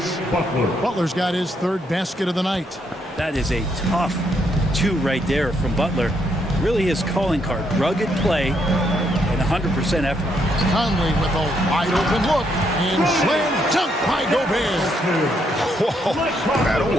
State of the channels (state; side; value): normal; both; correlation 0.75